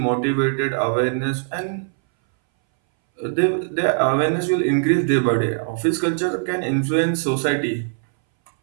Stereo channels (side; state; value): left; silent; 62 dB below the other